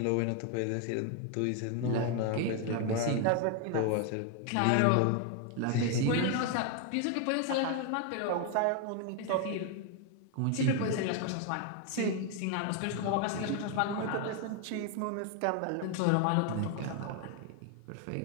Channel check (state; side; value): different; both; correlation 0.01